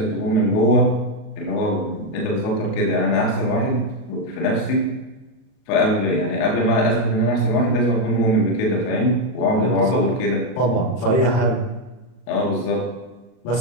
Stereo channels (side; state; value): right; late; 38 ms